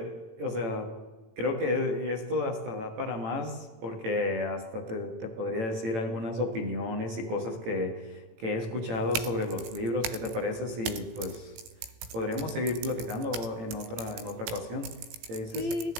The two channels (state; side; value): late; left; 18 ms